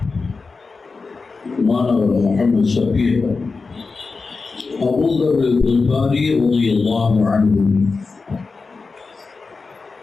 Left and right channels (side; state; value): right; quieter; 4.3 dB